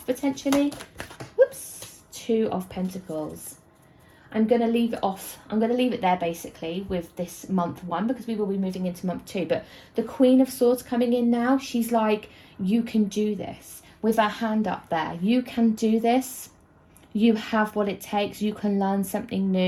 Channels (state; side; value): identical; both; correlation 1.00